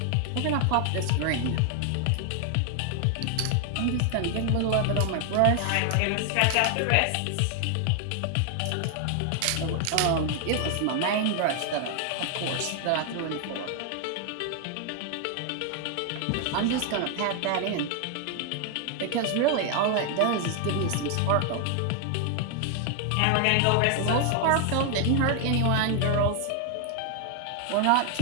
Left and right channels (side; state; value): both; different; correlation 0.00